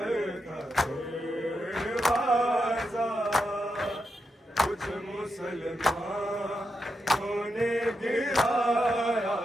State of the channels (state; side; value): normal; both; correlation 0.85